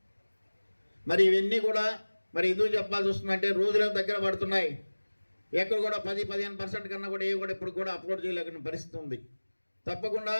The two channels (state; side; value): inverted; both; correlation -1.00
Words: మరి ఇవన్నీ కూడా మరి ఎందుకు చెప్పాల్సి వస్తుందంటే రోజులను దగ్గర పడుతున్నాయి. ఎక్కడ కూడా 10-15% కన్నా కూడా ఏవి కూడా ఇప్పుడు కూడా అప్లోడ్ చేయలేకున్న పరిస్థితి ఉంది. తప్పకుండా